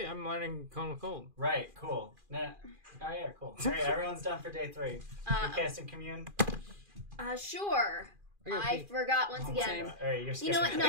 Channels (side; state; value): left; late; 2.4 ms